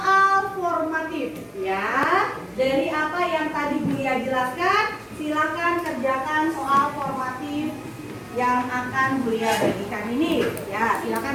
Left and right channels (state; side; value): identical; both; correlation 1.00